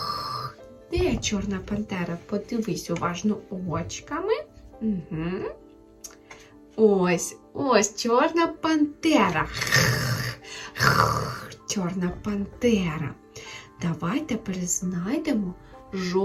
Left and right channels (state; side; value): identical; both; correlation 1.00